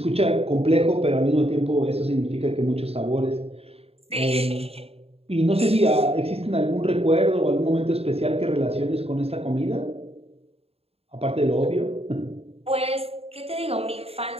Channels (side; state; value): left; late; 0.29 ms